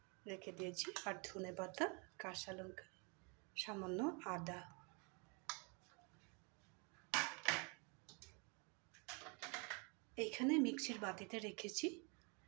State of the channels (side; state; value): left; quieter; 33.6 dB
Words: রেখে দিয়েছি, আর ধনে পাতা, কাঁচা লঙ্কা, সামান্য আদা। এইখানে মিক্সির বাটিতে রেখেছি,